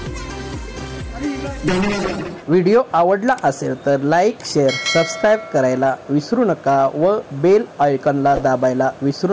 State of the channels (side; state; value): both; identical; correlation 1.00